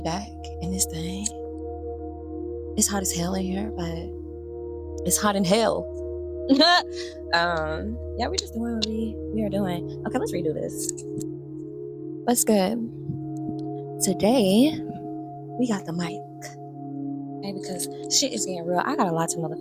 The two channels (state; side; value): identical; both; correlation 1.00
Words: back in this thing. It's hot as hell in here, but it's hot in hell. Yeah, we're just doing what we are doing. Okay, let's redo this. What's good? Today we got the mic. Okay, because shit is getting real. I got a lot to